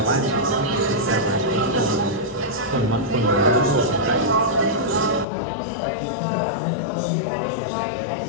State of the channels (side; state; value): right; drops out; at 5.2 s